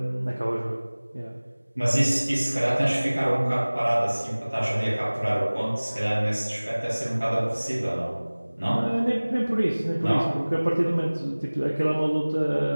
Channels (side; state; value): both; inverted; correlation -1.00